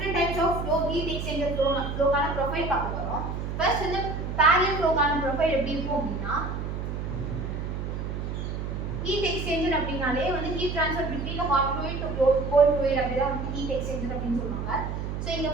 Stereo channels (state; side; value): noise; right; hum, 4 dB below the sound